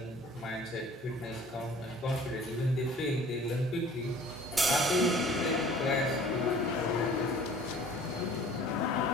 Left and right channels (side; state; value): both; normal; correlation 0.49